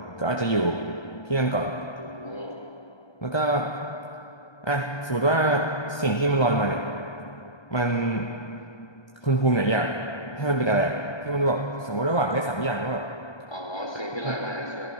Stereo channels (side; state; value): right; late; 1.2 ms